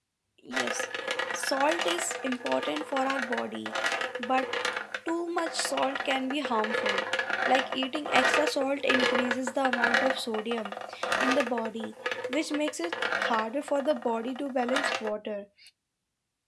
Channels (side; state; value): both; identical; correlation 1.00